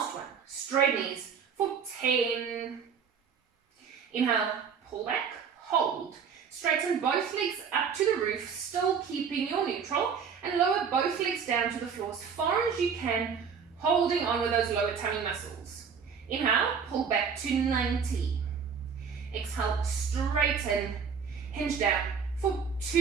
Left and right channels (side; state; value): left; quieter; 6.5 dB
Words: 1, straight knees for 10. Inhale, pull back, hold. Straighten both legs up to the roof, still keeping your neutral, and lower both legs down to the floor as far as you can, holding on with those lower tummy muscles. Inhale, pull back to 90. Exhale, straighten, hinge down for